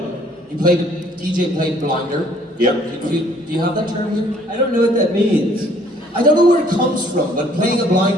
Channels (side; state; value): both; normal; correlation 0.60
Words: DJ played blinder. Yep. Do you have that term here? I don't know what that means. I don't know where it comes from, but playing a